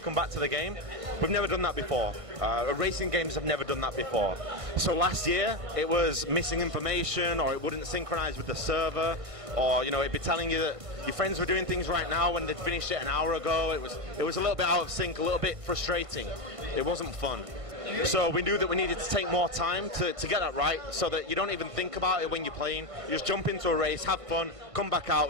come back to the game. We've never done that before. Racing games have never done that before. So last year it was missing information, or it wouldn't synchronize with the server, or it'd be telling you that your friends were doing things right now when they'd finished it an hour ago. It was a little bit out of sync, a little bit frustrating. It wasn't fun. So we knew that we needed to take more time to get that right, so that you don't even think about it when you're playing. You just jump into a race, have fun, come back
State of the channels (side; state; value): left; late; 1.5 ms